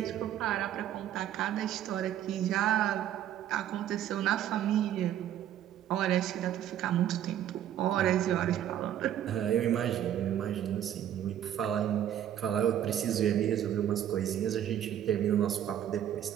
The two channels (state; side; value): quieter; left; 10.9 dB